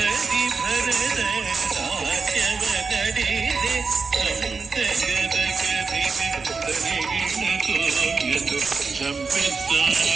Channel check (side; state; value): left; quieter; 4.7 dB